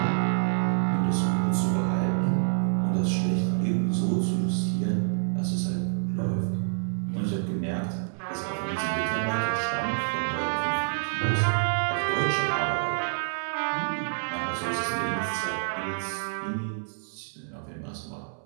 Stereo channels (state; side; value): silent; left; 60 dB below the other